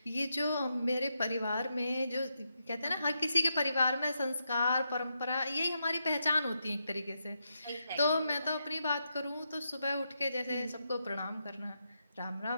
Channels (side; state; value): both; inverted; correlation -0.84